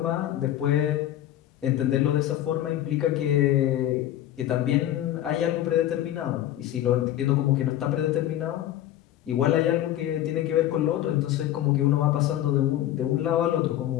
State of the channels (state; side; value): quieter; right; 12.6 dB